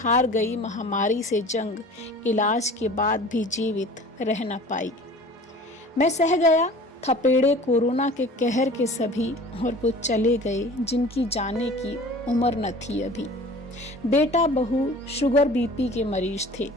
गई महामारी से जंग, इलाज के बाद भी जीवित रह न पाई। मैं सह गया थपेड़े कोरोना के कहर के सभी, और वो चले गए जिनकी जाने की उम्र न थी अभी। बेटा बहू शुगर बीपी के मरीज थे,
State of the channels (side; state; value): both; normal; correlation 0.43